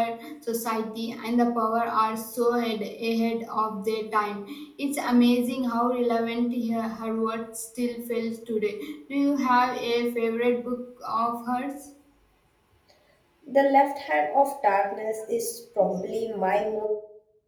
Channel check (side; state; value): both; identical; correlation 1.00